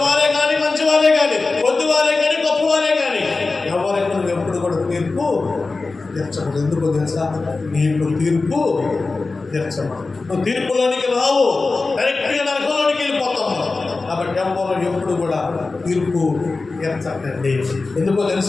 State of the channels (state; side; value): quieter; right; 3.7 dB